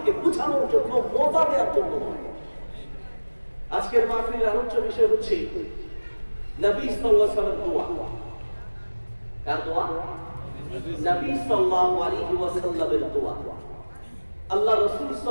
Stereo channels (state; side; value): inverted; both; correlation -1.00